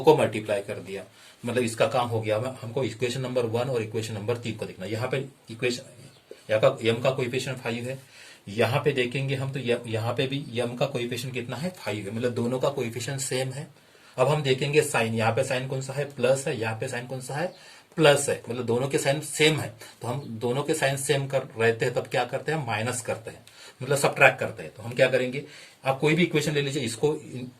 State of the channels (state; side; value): identical; both; correlation 1.00